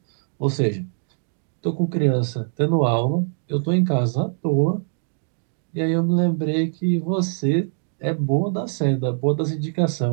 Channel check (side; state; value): left; silent; digital silence